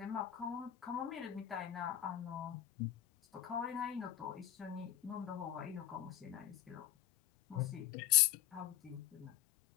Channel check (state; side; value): quieter; right; 12.3 dB